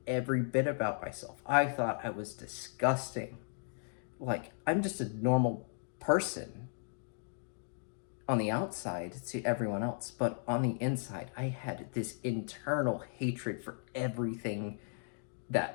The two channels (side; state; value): right; silent; digital silence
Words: every bit about myself. I thought I was disgusting. Like, I'm just a normal person on the outside to everyone else, but on the inside, I had this internal hatred for everything